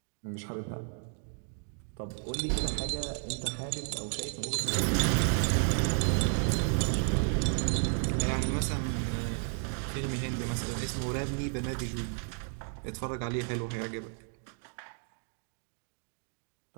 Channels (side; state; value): left; silent; 56 dB below the other